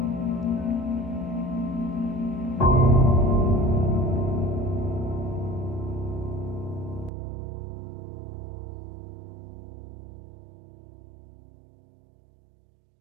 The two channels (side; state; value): left; drops out; at 7.1 s